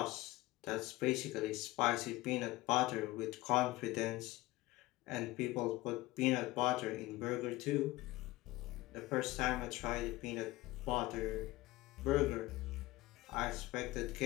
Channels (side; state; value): right; quieter; 18.8 dB